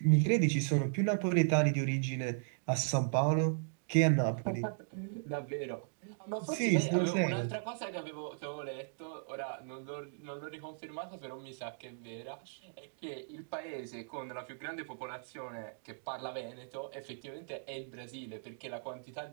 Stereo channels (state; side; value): silent; left; digital silence